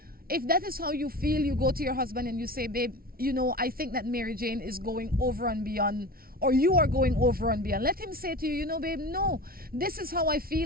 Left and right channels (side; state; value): left; late; 0.43 ms